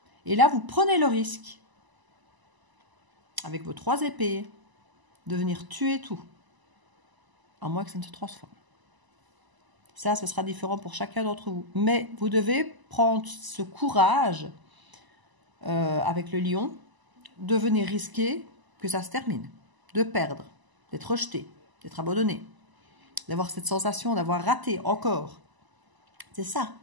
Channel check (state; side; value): late; left; 1.0 ms